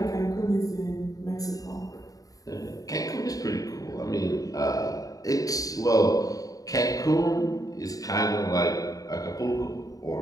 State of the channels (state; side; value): late; right; 0.17 ms